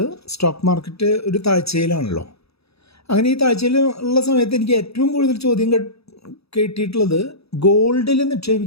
stock market ഒരു താഴ്ചയിലാണല്ലോ. അങ്ങനെ ഈ താഴ്ചയിൽ ഉള്ള സമയത്ത് എനിക്ക് ഏറ്റവും കൂടുതൽ ചോദ്യം കേട്ടിട്ടുള്ളത് ഗോൾഡിൽ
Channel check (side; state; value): right; late; 0.78 ms